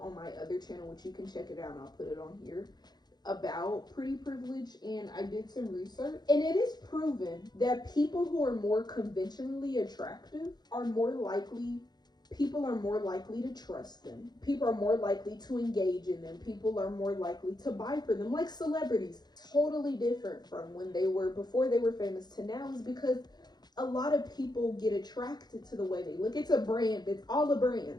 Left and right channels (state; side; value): late; right; 0.20 ms